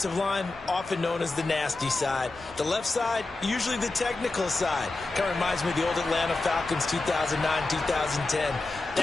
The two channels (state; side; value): quieter; right; 3.3 dB